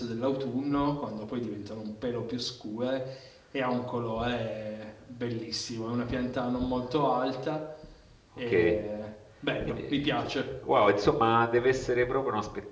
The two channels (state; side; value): identical; both; correlation 1.00